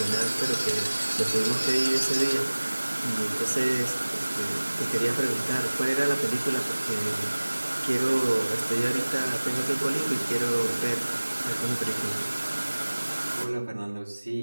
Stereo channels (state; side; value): inverted; both; correlation -1.00